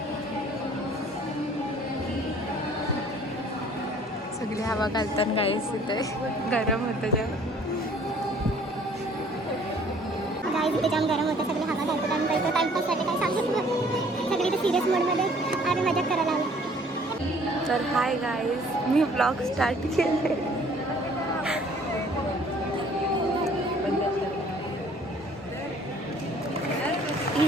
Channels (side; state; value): both; normal; correlation 0.56